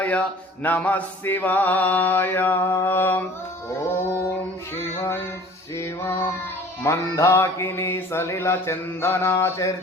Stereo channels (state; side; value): normal; both; correlation 0.48